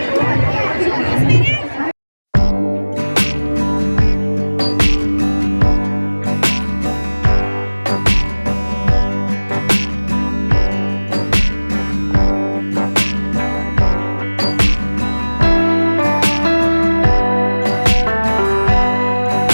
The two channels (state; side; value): inverted; both; correlation -1.00